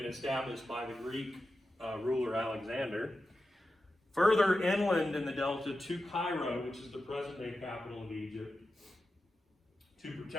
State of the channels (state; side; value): normal; both; correlation 0.91